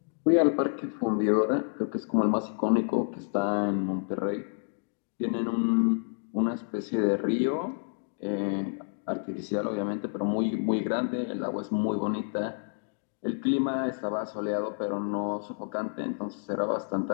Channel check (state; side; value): silent; right; digital silence